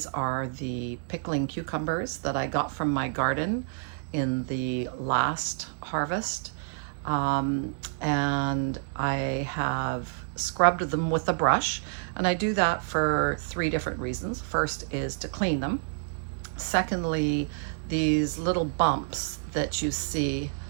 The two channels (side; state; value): left; silent; digital silence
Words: are the pickling cucumbers that I got from my garden in the last harvest. And I have scrubbed them with a brush, and I do that for 3 different reasons. First is to clean them. Secondly, these little bumps that you see